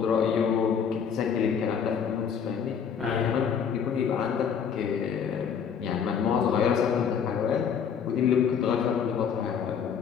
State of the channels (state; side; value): quieter; right; 7.3 dB